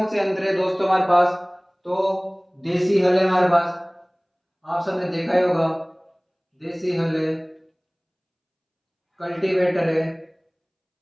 से यंत्र है दोस्तों हमारे पास? तो देसी हल है हमारे पास, आप सबने देखा ही होगा, देसी हल है, कल्टीवेटर है,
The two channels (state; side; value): identical; both; correlation 1.00